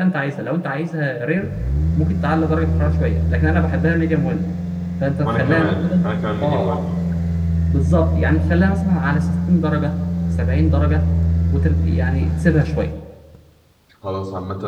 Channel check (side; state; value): both; identical; correlation 1.00